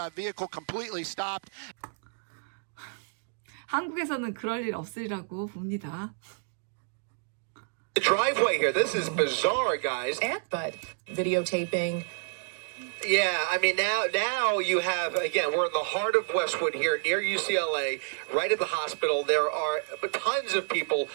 vehicle completely stopped. 한국에서는 그럴 일 없으리라고 봅니다. The driveway here, this is bizarre, guys. But videotaping. Yeah, I mean, now you have, again, we're in the heart of Westwood here near UCLA, right at the hospital. There are tons of people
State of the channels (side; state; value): left; silent; 58 dB below the other